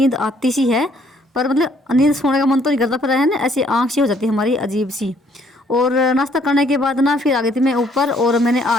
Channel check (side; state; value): both; normal; correlation 0.65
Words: आती सी है, पर मतलब नींद सोने का मन तो नहीं करता, पर है ना ऐसी आँख सी हो जाती है हमारी अजीब सी। और नाश्ता करने के बाद ना फिर आ गई थी मैं ऊपर, और मैंने